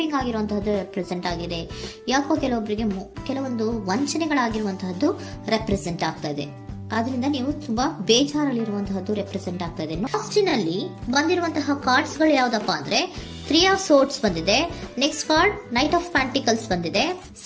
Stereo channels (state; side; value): identical; both; correlation 1.00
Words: ಆಗಿರುವಂತಹದ್ದು ರೆಪ್ರೆಸೆಂಟ್ ಆಗಿದೆ. ಯಾಕೋ ಕೆಲವೊಬ್ಬರಿಗೆ ಕೆಲವೊಂದು ವಂಚನೆಗಳಾಗಿರುವಂತಹದ್ದು ರೆಪ್ರೆಸೆಂಟ್ ಆಗ್ತಾ ಇದೆ. ಆದ್ರಿಂದ ನೀವು ತುಂಬಾ ಬೇಜಾರಲ್ಲಿರುವಂತಹದ್ದು ರೆಪ್ರೆಸೆಂಟ್ ಆಗ್ತಾ ಇದೆ. ಲಾಸ್ಟಿನಲ್ಲಿ ಬಂದಿರುವಂತಹ ಕಾರ್ಡ್ಸ್ ಗಳು ಯಾವ್ದಪ್ಪ ಅಂದ್ರೆ 3 ಆಫ್ ಸೋರ್ಡ್ಸ್ ಬಂದಿದೆ. Next card knight of pentacles ಬಂದಿದೆ.